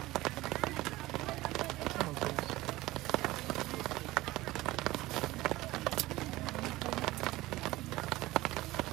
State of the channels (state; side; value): quieter; left; 18.3 dB